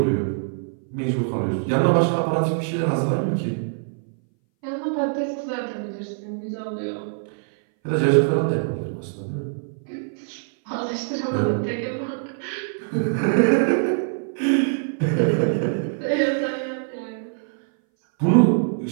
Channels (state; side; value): silent; left; 60 dB below the other